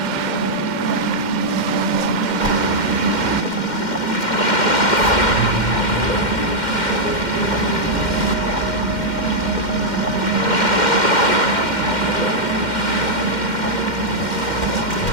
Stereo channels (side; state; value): right; late; 2.1 ms